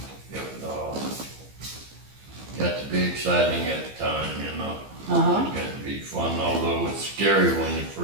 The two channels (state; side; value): late; left; 15 ms